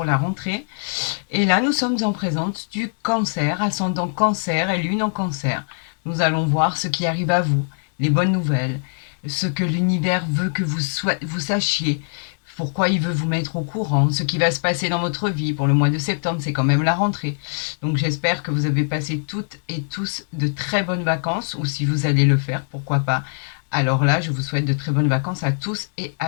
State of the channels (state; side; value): silent; right; 64 dB below the other